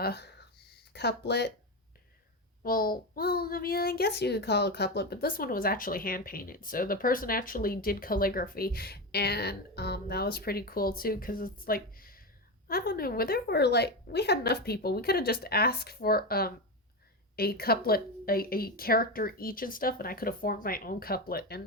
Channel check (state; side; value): normal; both; correlation 0.16